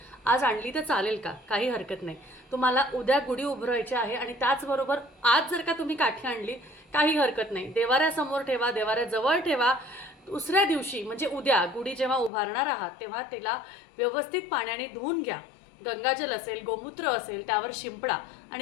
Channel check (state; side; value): drops out; right; at 12.3 s